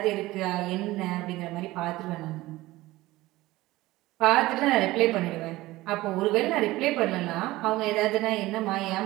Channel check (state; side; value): quieter; left; 18.2 dB